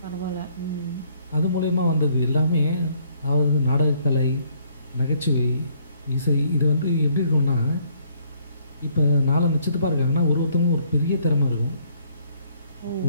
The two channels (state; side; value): inverted; both; correlation -0.65